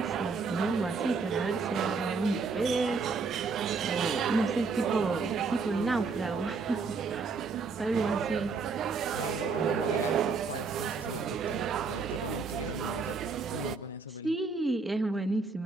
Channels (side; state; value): left; quieter; 4.6 dB